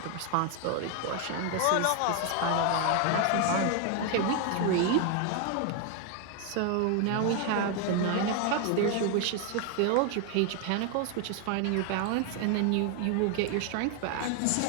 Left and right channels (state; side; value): different; both; correlation 0.01